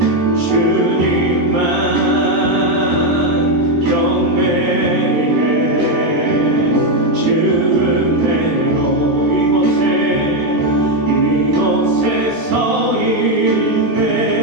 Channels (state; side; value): late; left; 13 ms